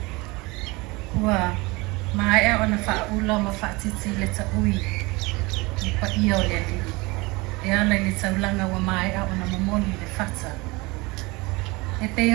Ua, mai e ona whaula ma whaatiti le ta ui, i pa ia o le li. E ala le taulanga wa mai e ona momoni le whata. E pe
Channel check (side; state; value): left; quieter; 24.2 dB